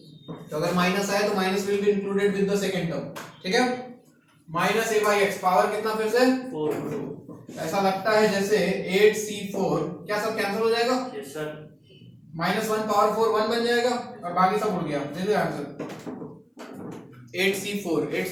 तो अगर माइनस आए तो minus will be included with the second term, ठीक है? Minus a by x, power कितना फिर से? 4। ऐसा लगता है जैसे 8c4, क्या सब कैंसिल हो जाएगा? Yes sir. -1 पावर 4 1 बन जाएगा, और बाकी सब उड़ गया। दे दो आंसर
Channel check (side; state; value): both; identical; correlation 1.00